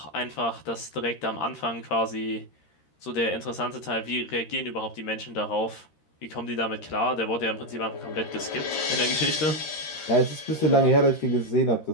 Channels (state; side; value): late; right; 13 ms